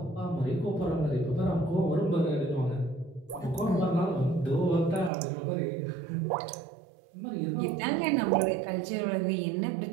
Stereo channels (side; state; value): left; drops out; at 5.1 s